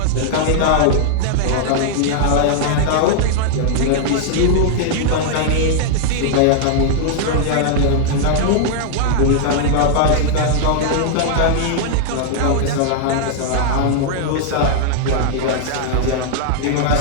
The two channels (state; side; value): different; both; correlation -0.01